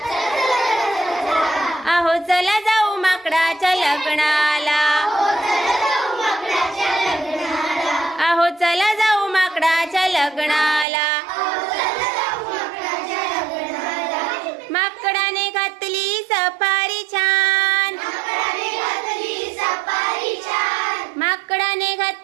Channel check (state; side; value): drops out; left; at 10.9 s